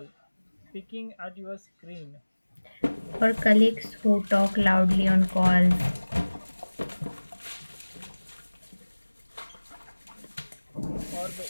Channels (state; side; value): inverted; both; correlation -1.00